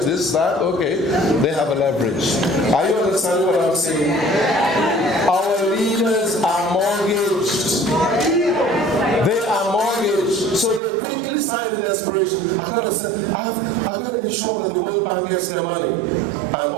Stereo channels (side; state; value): left; drops out; at 10.8 s